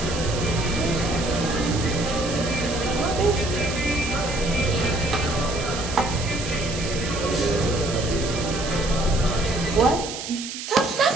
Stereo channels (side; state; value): right; noise; hiss, 8 dB below the sound